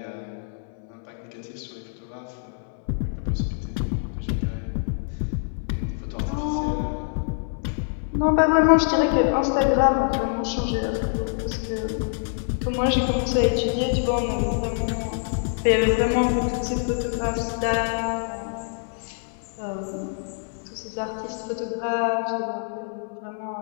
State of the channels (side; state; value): right; silent; digital silence